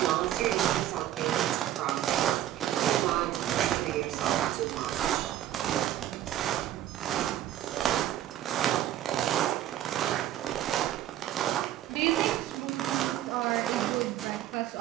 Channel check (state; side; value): quieter; left; 12.5 dB